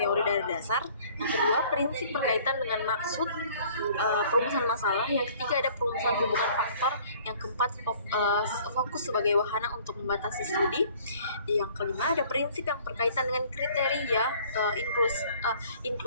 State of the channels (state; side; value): inverted; both; correlation -0.54